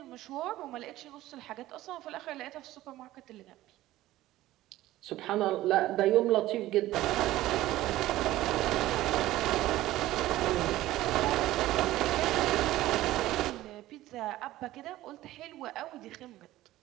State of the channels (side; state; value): left; quieter; 15.7 dB